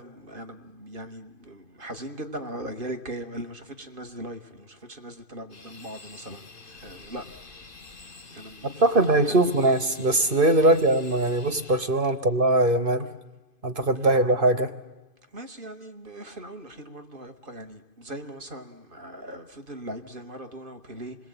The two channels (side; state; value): left; late; 2.5 ms